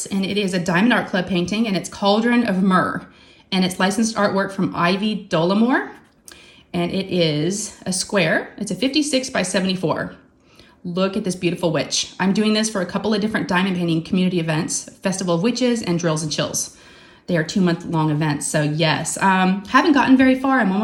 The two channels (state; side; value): identical; both; correlation 1.00